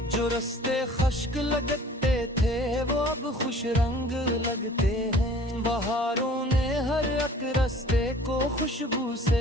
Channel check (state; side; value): normal; both; correlation 0.49